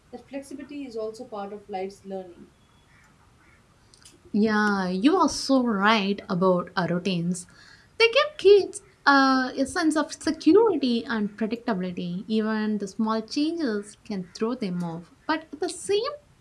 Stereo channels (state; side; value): identical; both; correlation 1.00